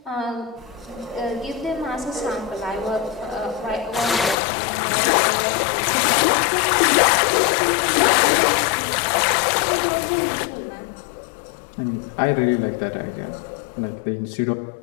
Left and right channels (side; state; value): right; drops out; at 4.4 s